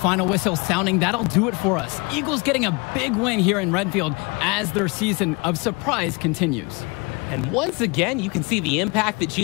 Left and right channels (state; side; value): quieter; right; 29.1 dB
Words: whistle sounding, that'll do it for us. Eagles getting a big win here in Redfield as their season of surprise continues. And once again, you can see the impact that